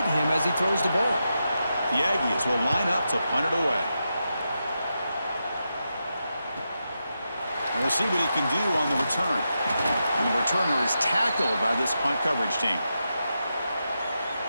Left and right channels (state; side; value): inverted; both; correlation -0.87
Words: him as he throws the ball. The Aggies will line up to punt it away. And we'll see what he can do on the return. And the returner is tackled by this punt coverage team.